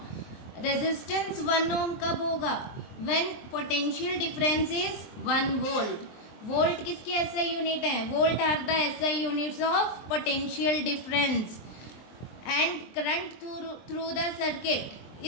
रेजिस्टेंस 1 ओम कब होगा? When potential difference is 1 volt. Volt किसकी एसआई यूनिट है? Volt are the SI units of potential difference. And current through the circuit.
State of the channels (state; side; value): late; right; 23 ms